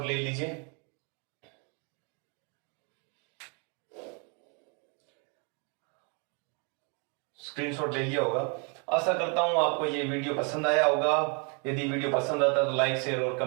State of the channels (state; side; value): quieter; left; 36.0 dB